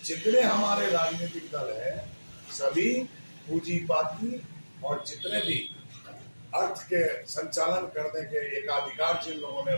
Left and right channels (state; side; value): inverted; both; correlation -1.00